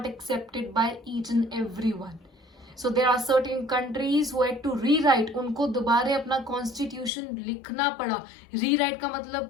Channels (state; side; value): drops out; right; at 7.1 s